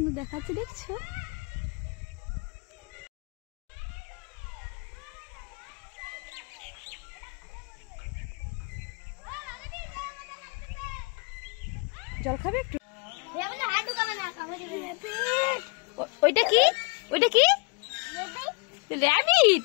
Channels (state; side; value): quieter; right; 30.9 dB